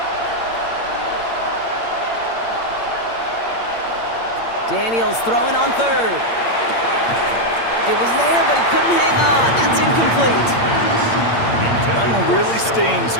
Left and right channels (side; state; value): right; late; 8.7 ms